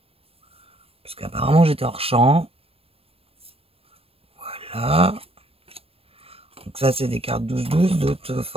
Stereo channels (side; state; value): left; late; 0.28 ms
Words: Parce qu'apparemment, j'étais hors champ. Voilà. Donc ça, c'est des cartes 12-12, d'autres